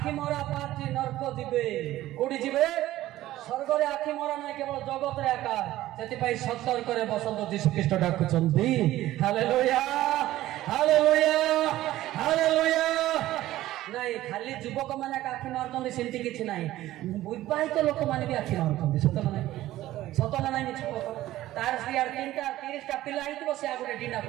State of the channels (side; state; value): left; quieter; 15.1 dB